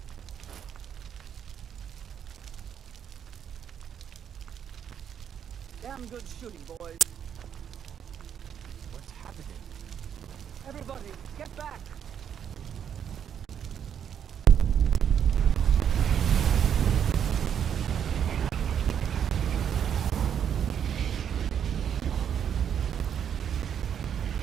Damn good shooting, boys. What's happening? Everybody, get back!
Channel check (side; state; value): left; quieter; 8.6 dB